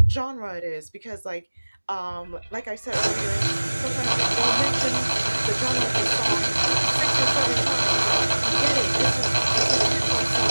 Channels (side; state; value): both; inverted; correlation -1.00